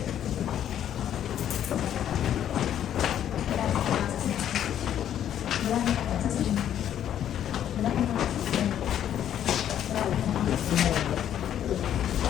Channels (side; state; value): right; quieter; 10.4 dB